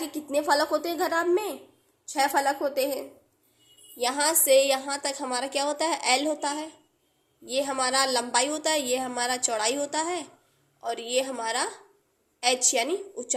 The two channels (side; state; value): both; identical; correlation 1.00